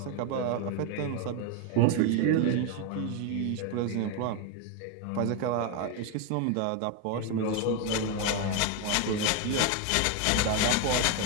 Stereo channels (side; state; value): both; different; correlation 0.02